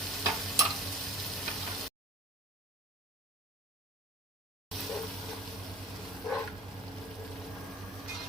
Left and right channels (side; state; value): both; normal; correlation 0.42